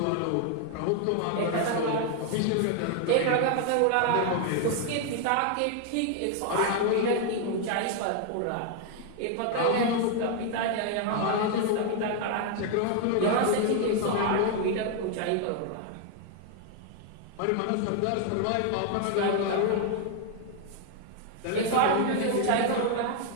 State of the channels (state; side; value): different; both; correlation 0.00